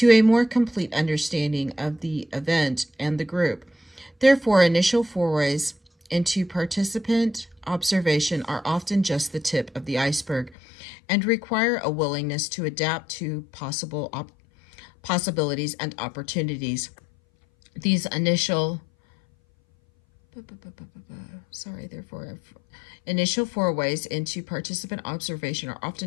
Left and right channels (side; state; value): right; drops out; at 10.6 s